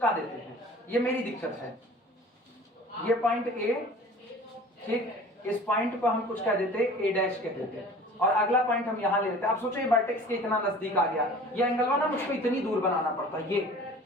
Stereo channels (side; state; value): both; normal; correlation 0.43